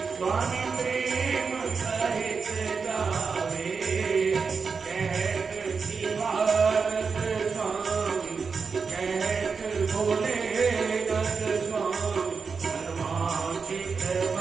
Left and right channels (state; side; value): quieter; left; 5.2 dB